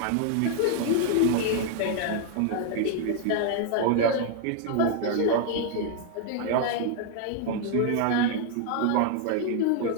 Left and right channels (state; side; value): different; both; correlation 0.00